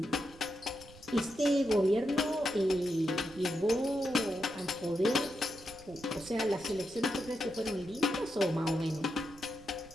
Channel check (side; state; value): right; noise; rumble, 20 dB below the sound